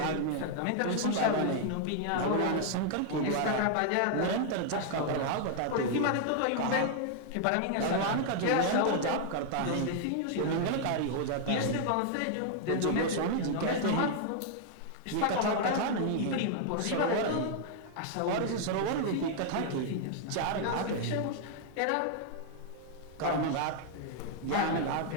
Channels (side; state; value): both; different; correlation 0.00